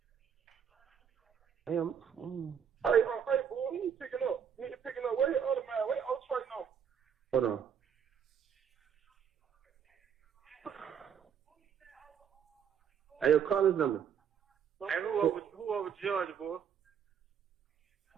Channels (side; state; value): left; quieter; 7.9 dB